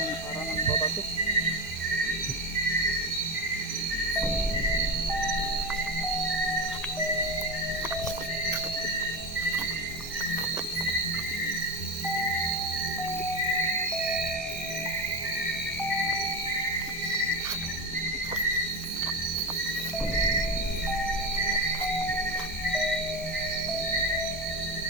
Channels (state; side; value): normal; both; correlation 0.18